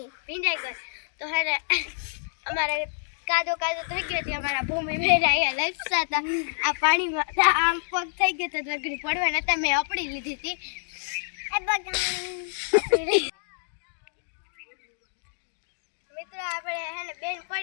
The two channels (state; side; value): silent; right; digital silence